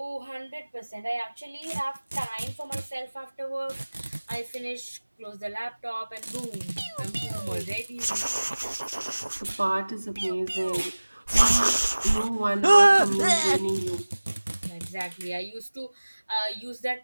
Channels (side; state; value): both; inverted; correlation -1.00